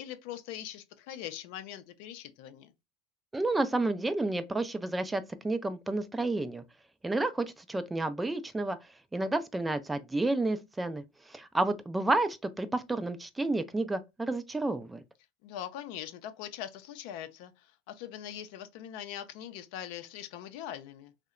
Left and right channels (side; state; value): both; normal; correlation 0.85